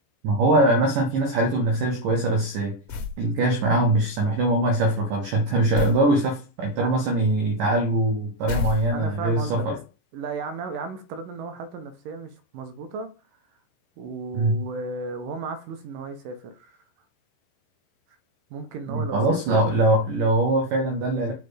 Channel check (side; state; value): left; late; 11 ms